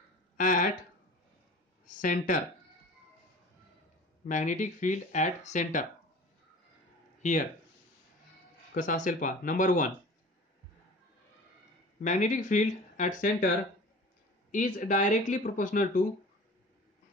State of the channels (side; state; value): both; normal; correlation 0.41